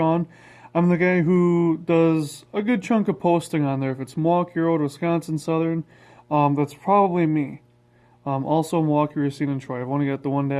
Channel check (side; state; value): both; identical; correlation 1.00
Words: I'm the guy who does a good chunk of posting on there. If it's Milwaukee Road, Wisconsin Southern, that's probably me. Also Milwaukee, Racine, and Troy. I've only got the